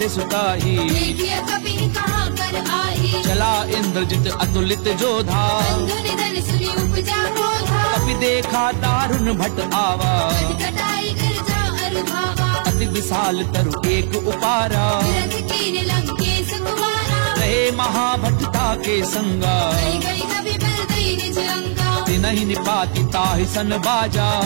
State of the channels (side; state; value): left; silent; digital silence